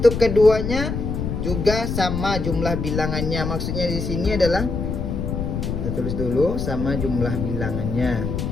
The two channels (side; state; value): left; noise; rumble, 3 dB below the sound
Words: keduanya juga sama jumlah bilangannya. Maksudnya di sini adalah, kita tulis dulu, sama jumlah bilangannya.